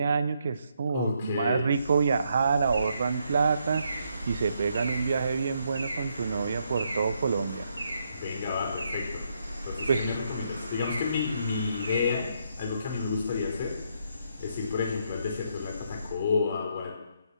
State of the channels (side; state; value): both; inverted; correlation -0.76